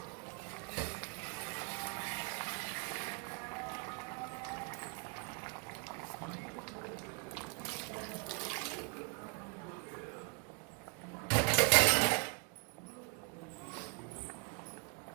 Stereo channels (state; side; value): quieter; left; 33.1 dB